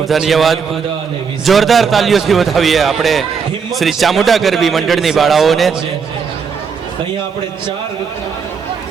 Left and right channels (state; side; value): quieter; left; 6.1 dB